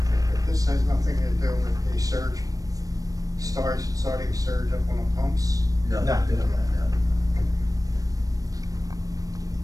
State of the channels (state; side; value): late; left; 0.17 ms